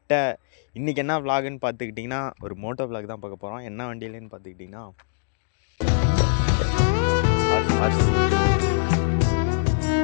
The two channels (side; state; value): right; silent; digital silence